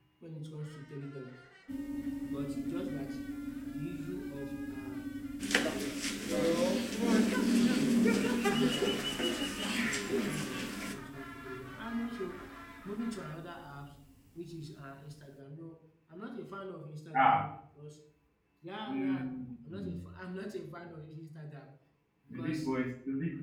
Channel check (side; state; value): both; identical; correlation 1.00